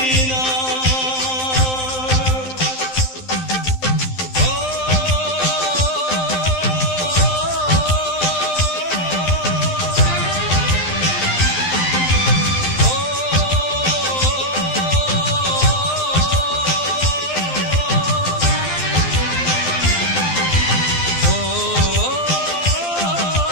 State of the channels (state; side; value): late; right; 12 ms